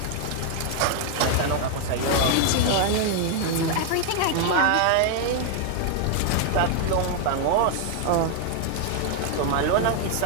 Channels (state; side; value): different; both; correlation 0.00